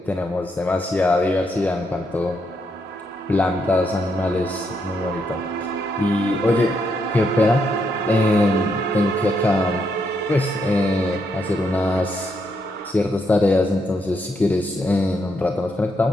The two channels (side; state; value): both; normal; correlation 0.78